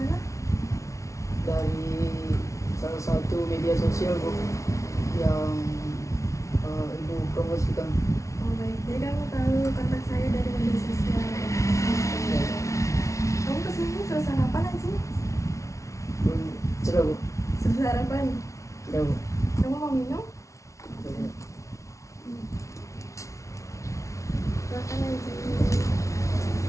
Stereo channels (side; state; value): right; late; 0.14 ms